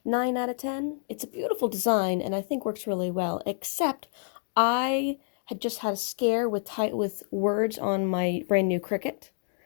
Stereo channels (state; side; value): silent; right; digital silence